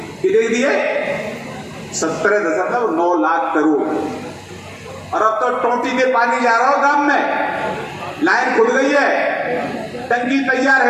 कितने दिए? 17.9 लाख करोड़। और अब तो टोटी के पानी जा रहा हो गांव में, लाइन खुल गई है, टंकी तैयार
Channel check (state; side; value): identical; both; correlation 1.00